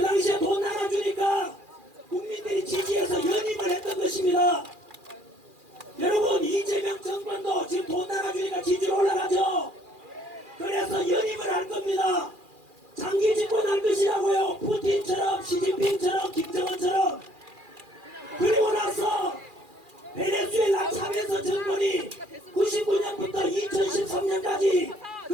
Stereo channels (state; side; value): late; left; 2.4 ms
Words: 당시에 돈 나눠주니까 국민들이 지지해서 연임을 했던 것입니다. 여러분, 이재명 정권도 지금 돈 나눠주니까 지지율 올라가죠. 그래서 연임을 할 겁니다. 장기 집권할 것이라고요. 푸틴처럼 시진핑처럼 김정은처럼. 그리고 나서 베네수엘라 차베스 정권이 99년부터 2013년까지